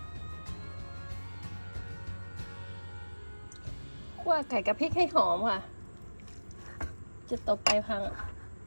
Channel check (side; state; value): both; inverted; correlation -1.00